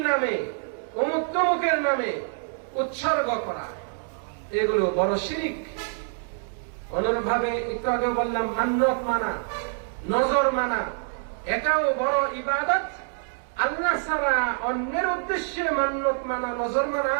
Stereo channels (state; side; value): silent; left; 61 dB below the other